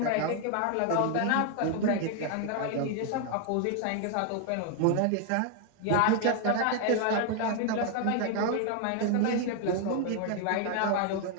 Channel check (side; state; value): both; different; correlation 0.01